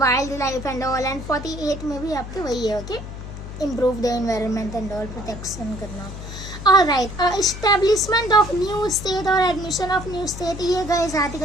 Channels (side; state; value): left; noise; hum, 10 dB below the sound